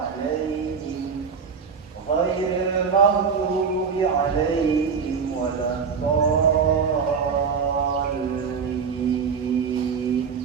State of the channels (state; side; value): quieter; left; 5.9 dB